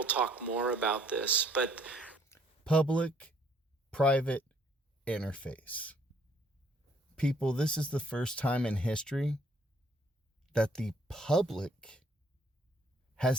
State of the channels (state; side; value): normal; both; correlation 0.63